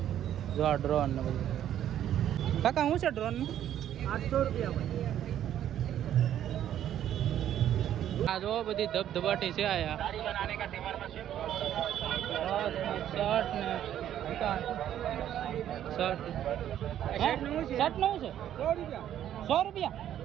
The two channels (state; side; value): quieter; left; 11.0 dB